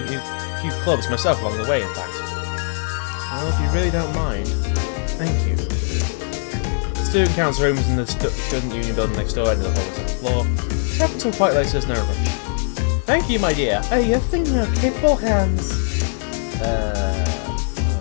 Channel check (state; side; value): silent; right; 65 dB below the other